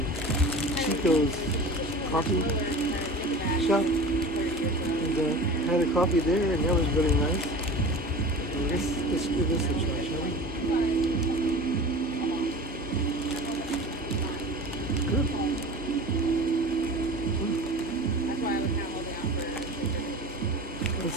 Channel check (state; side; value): noise; right; hum, 20 dB below the sound